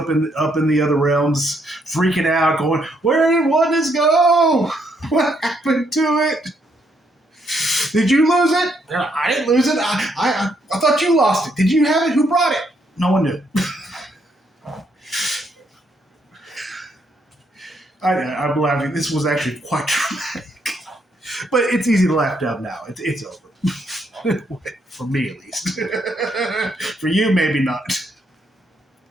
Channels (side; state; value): both; normal; correlation 0.74